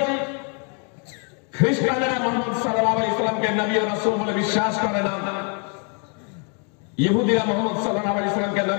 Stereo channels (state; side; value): quieter; right; 38.9 dB